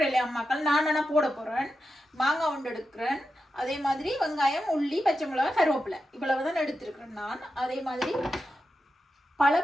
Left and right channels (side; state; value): both; normal; correlation 0.89